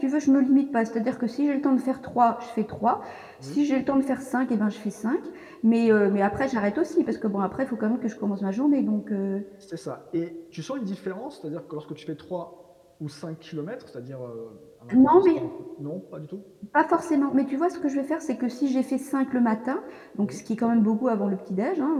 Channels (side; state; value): both; identical; correlation 1.00